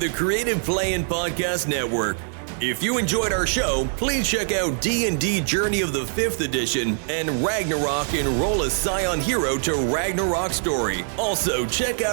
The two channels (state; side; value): silent; left; 63 dB below the other